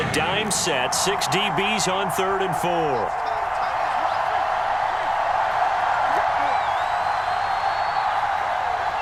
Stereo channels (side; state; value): both; identical; correlation 1.00